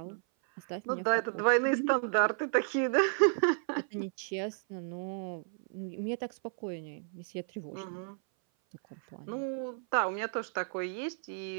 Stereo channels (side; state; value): left; silent; 56 dB below the other